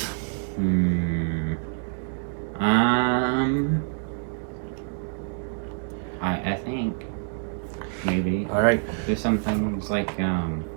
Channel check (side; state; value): left; silent; 61 dB below the other